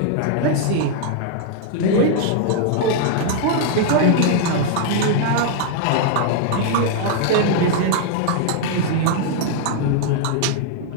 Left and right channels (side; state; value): both; different; correlation 0.00